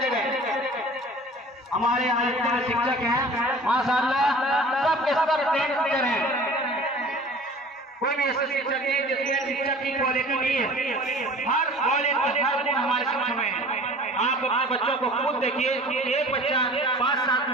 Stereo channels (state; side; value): normal; both; correlation 0.45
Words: गए। हमारे यहाँ जितने शिक्षक हैं माशाअल्लाह सब के सब ट्रेन टीचर हैं, कोई भी ऐसे शिक्षक नहीं जिसमें शिक्षक की क्वालिटी नहीं है। हर क्वालिटी हर गुण हमारे शिक्षक में है। आप अपने बच्चों को खुद देखिए, एक बच्चा 5 साल